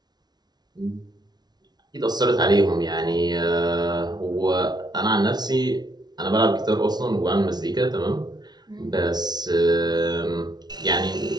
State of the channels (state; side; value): late; left; 0.19 ms